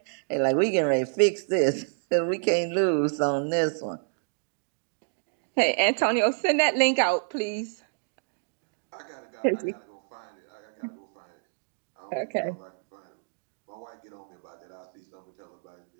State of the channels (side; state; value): left; silent; digital silence